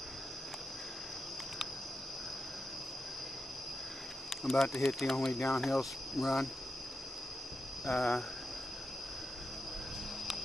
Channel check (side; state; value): both; normal; correlation 0.87